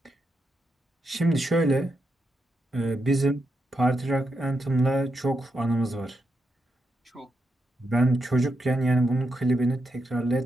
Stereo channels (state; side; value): normal; both; correlation 0.84